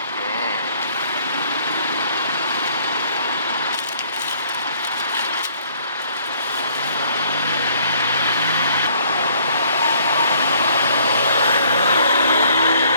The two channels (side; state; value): both; inverted; correlation -0.61